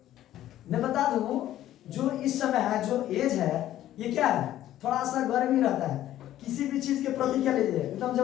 मैं बता दूं, जो इस समय है, जो एज है, ये क्या है, थोड़ा सा गर्मी रहता है। किसी भी चीज के प्रति क्या लीजिए, एकदम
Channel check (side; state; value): right; quieter; 13.0 dB